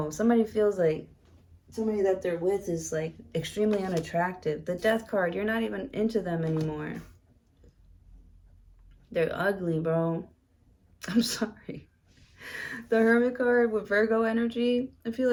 Somebody feels like somebody that they're with is like extremely unattractive. The Death card, you're not even into them anymore. They're ugly, bro. I'm sorry. The Hermit card with Virgo energy, I feel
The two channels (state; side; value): identical; both; correlation 1.00